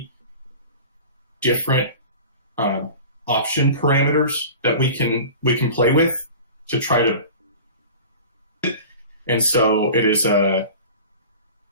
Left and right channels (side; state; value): both; inverted; correlation -0.37